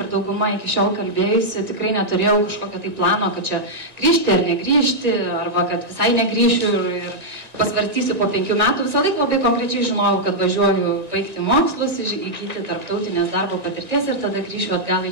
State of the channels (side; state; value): left; late; 1.9 ms